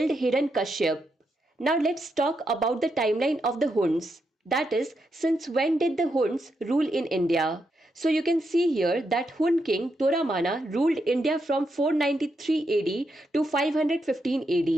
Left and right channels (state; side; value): normal; both; correlation 0.82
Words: Hiranyakashyap. Now let's talk about the timeline of the Huns. That is, since when did the Huns rule in India? So you can see here that Hun king Toramana ruled India from 493 AD to 515